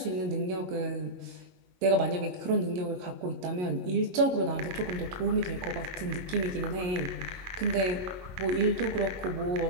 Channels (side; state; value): left; late; 22 ms